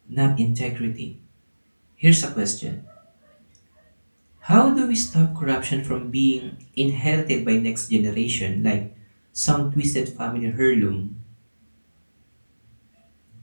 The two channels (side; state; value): both; inverted; correlation -1.00